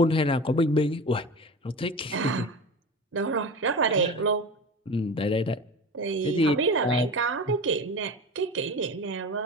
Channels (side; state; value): both; normal; correlation 0.30